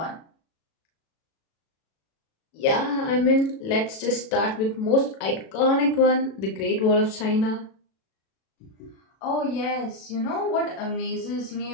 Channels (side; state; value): right; late; 37 ms